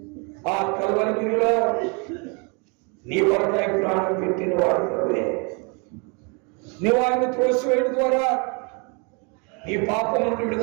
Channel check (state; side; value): quieter; left; 33.9 dB